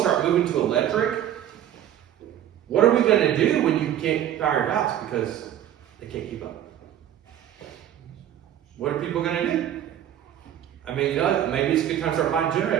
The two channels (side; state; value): left; quieter; 11.1 dB